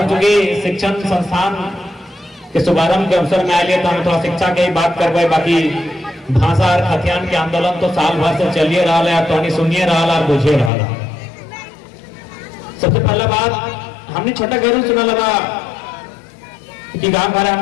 चूंकि शिक्षण संस्थान के शुभारंभ के अवसर में आए तो हम थोड़ा शिक्षा के ही बात करवाए। बाकी भाषा और खतियान के आंदोलन तो साल भर से चलिए रहा है, तो सुनिए रहा और बुझे रहा। सबसे पहला बात हमने छोटा गैर सुना लगा कि गांव घर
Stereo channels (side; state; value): right; drops out; at 10.7 s